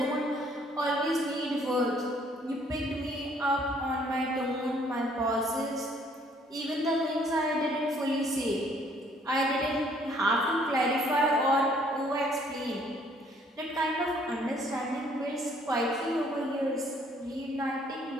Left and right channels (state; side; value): normal; both; correlation 0.62